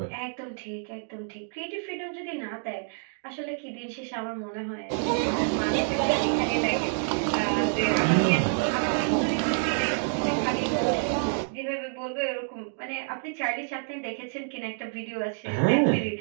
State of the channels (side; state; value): left; silent; digital silence